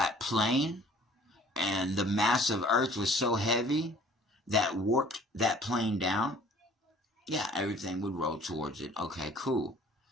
plane and the mass of Earth was so heavy that warped that plane down, yeah, everything would roll towards it. Okay, cool.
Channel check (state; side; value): normal; both; correlation 0.53